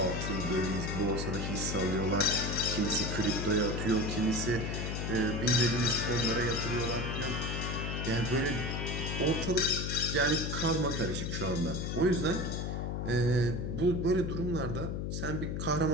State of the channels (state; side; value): noise; left; hum, 2 dB below the sound